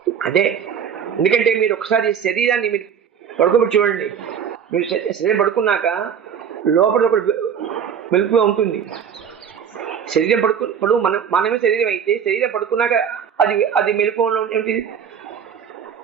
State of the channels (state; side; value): quieter; left; 7.8 dB